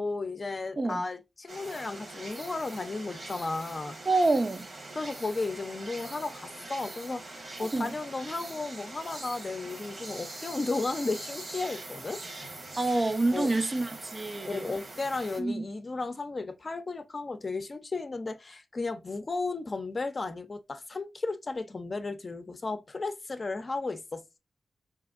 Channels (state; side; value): normal; both; correlation 0.93